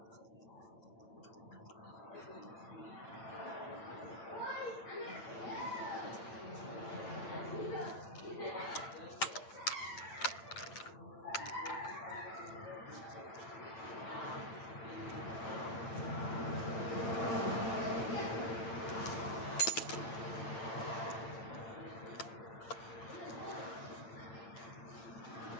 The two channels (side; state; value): right; late; 8.9 ms